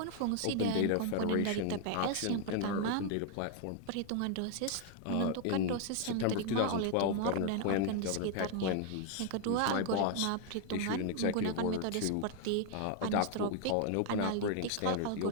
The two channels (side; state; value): both; different; correlation 0.00